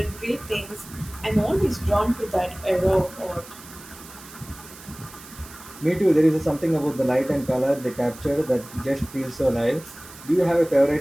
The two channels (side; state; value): right; noise; hiss, 18 dB below the sound